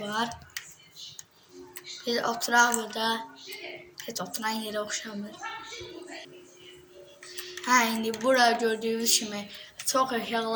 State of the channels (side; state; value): both; identical; correlation 1.00